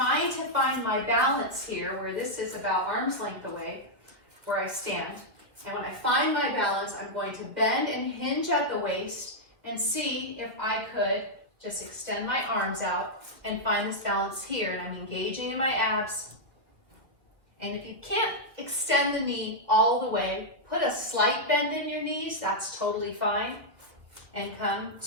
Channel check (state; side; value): late; left; 1.9 ms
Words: to find my balance here, where this is about arm's length away, where I stand. And when I find my balance, I'm going to bend and hinge at the waist and see if I could just extend my arms out and find this balance here. And I'm engaging in my abs. And if you can't extend the knee all the way, put a slight bend in your knees. That's totally fine. And come